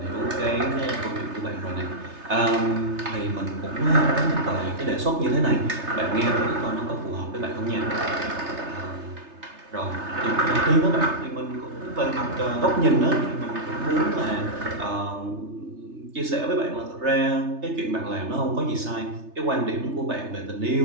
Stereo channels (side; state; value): left; late; 3.3 ms